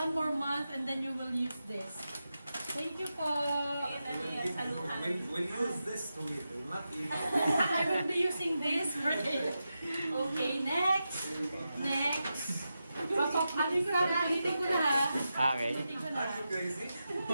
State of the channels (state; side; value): inverted; both; correlation -0.90